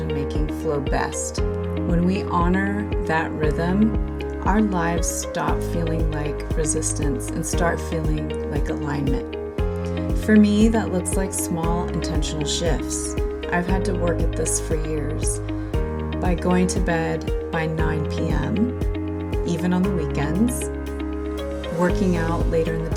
flow best. When we honor that rhythm, our lives stop feeling like resistance and start feeling like alignment. For me, that looks like small intentional shifts. I've had to work at this for years. By going to bed by 9 p.m., even on the weekends, working out later in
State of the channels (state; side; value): identical; both; correlation 1.00